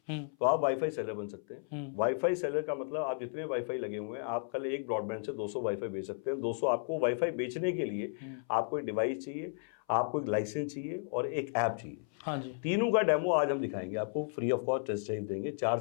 तो आप वाईफाई सेलर बन सकते हैं। वाईफाई सेलर का मतलब आप जितने वाईफाई लगे हुए हैं, आप कल एक ब्रॉडबैंड से 200 वाईफाई बेच सकते हैं। 200 आपको वाईफाई बेचने के लिए आपको एक डिवाइस चाहिए, आपको एक लाइसेंस चाहिए और एक ऐप चाहिए। हाँ जी। तीनों का डेमो आज हम दिखाएंगे आपको, free of cost test drive देंगे। 4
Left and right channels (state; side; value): silent; right; 55 dB below the other